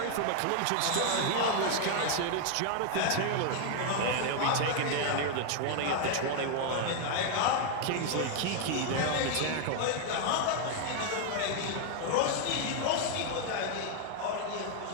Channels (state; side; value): different; both; correlation 0.00